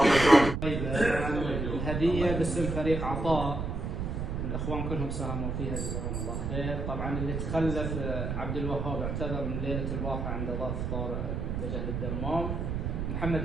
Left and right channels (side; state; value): right; noise; rumble, 2 dB below the sound